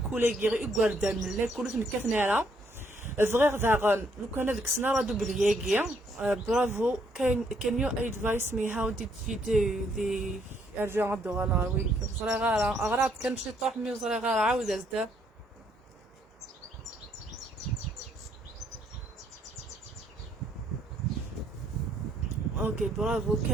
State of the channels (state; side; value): normal; both; correlation 0.70